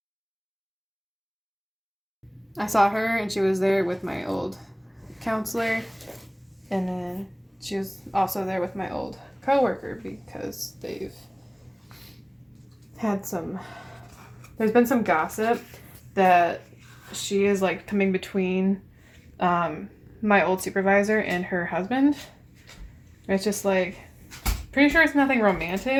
I saw her and she was there with my old counselor. And then she was also there with my old coworker because they've had some... There's been some gossip that she is like coming between my old supervisor and her husband. It's just like, pretty sure it's nothing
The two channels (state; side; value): identical; both; correlation 1.00